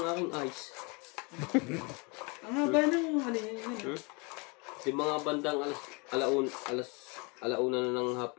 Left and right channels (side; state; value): right; quieter; 30.1 dB